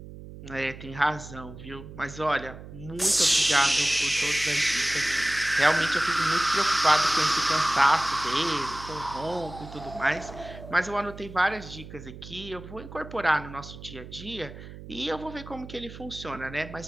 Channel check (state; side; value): noise; right; hum, 14 dB below the sound